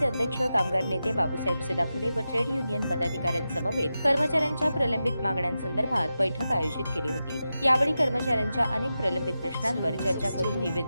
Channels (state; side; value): inverted; both; correlation -0.91